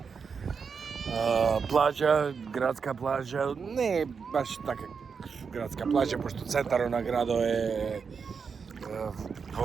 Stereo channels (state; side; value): quieter; left; 5.8 dB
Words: плажа, градска плажа, не е баш така градска плажа, пошто центарот на градот е